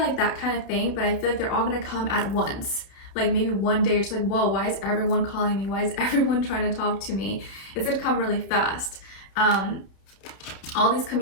that kind of thing, but I feel like they're all going to come at once. Like maybe one day it's like, whoa, why is everyone calling me? Why is everyone trying to talk to me? It's gonna come really fast. all these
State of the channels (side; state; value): right; late; 31 ms